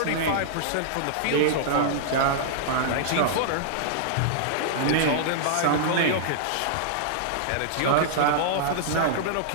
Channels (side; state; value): both; different; correlation -0.02